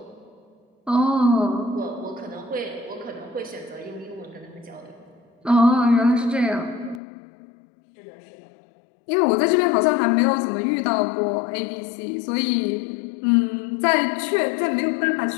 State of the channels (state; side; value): drops out; right; at 7.0 s